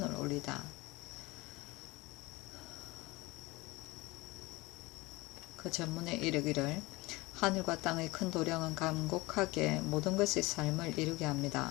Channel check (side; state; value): right; quieter; 22.1 dB